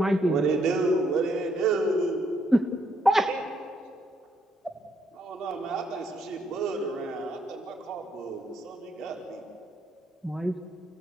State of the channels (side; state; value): both; normal; correlation 0.73